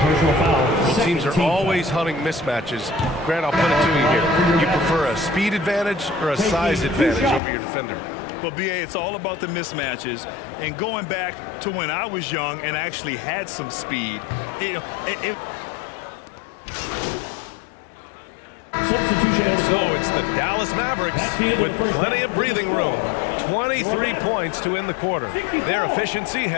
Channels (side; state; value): right; drops out; at 7.4 s